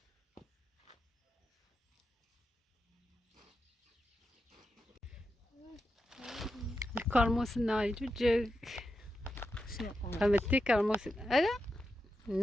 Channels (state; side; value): normal; both; correlation 0.88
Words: الكرموس ناي جوج It's not on. فهمتي كرموس هذا